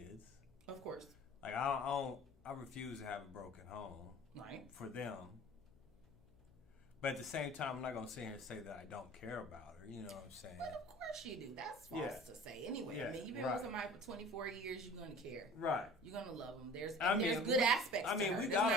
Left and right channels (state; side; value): noise; left; hum, 28 dB below the sound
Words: Of course. Like, I refuse to have a broken home. Right. For them. But at the same time, I'm not going to sit here and say that I don't care about her. You know what I'm saying? But of course you do. That's false to say. Anyway, I mean, you've been with somebody for 24 years, you're going to care. Right. You're going to love them. There's good aspects to her. It's